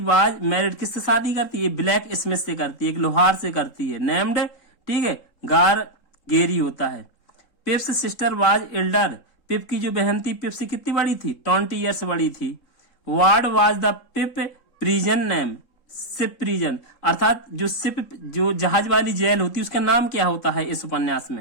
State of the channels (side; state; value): right; late; 3.7 ms